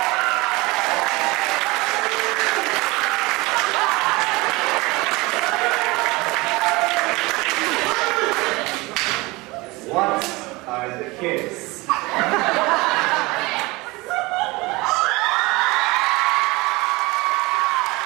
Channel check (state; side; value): quieter; left; 23.0 dB